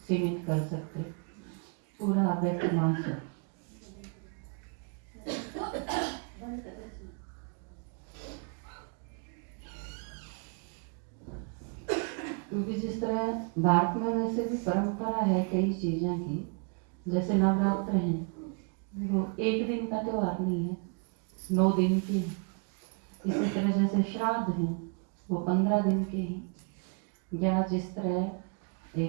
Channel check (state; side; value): quieter; left; 37.6 dB